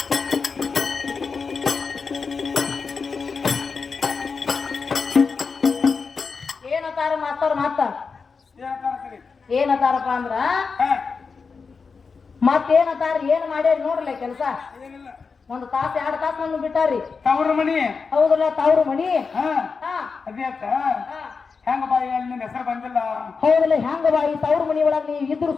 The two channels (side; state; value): right; quieter; 5.0 dB